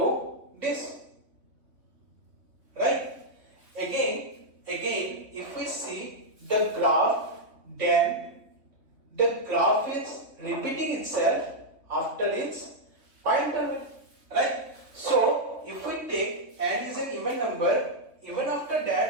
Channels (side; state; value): left; late; 3.5 ms